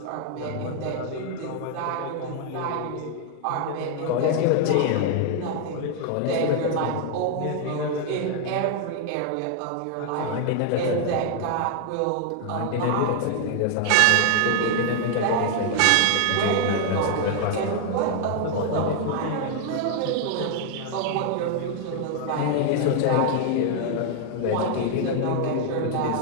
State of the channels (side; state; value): both; different; correlation 0.00